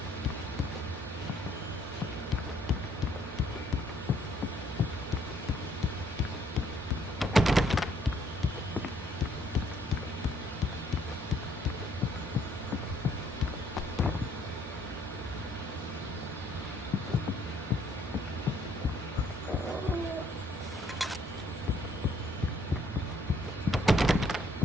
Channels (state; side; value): normal; both; correlation 0.66